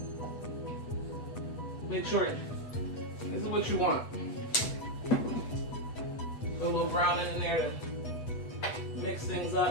Make sure this is what you want. Put a little browning in there to mix things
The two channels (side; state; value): right; late; 8.1 ms